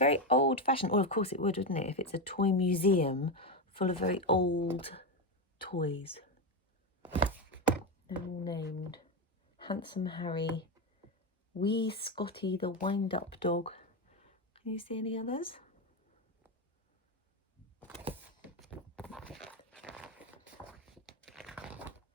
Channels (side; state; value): both; normal; correlation 0.11